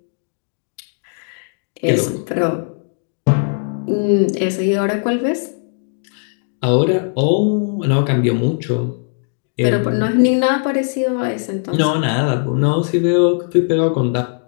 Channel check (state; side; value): silent; right; digital silence